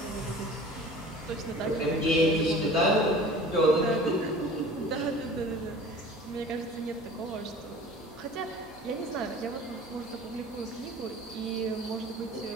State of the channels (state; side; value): normal; both; correlation 0.43